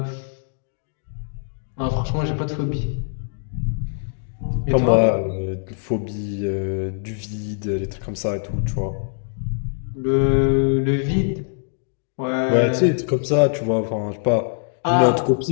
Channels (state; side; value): silent; right; digital silence